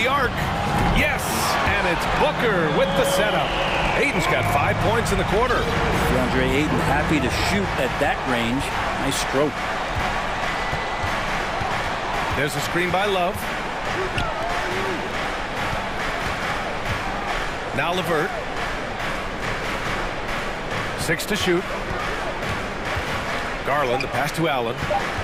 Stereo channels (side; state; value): both; identical; correlation 1.00